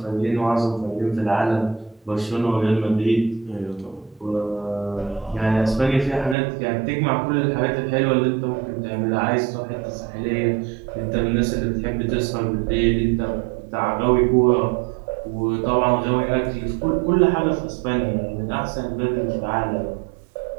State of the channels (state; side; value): drops out; left; at 6.4 s